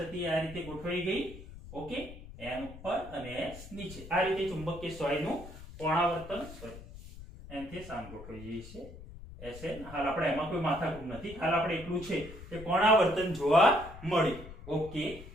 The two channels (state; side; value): noise; left; rumble, 15 dB below the sound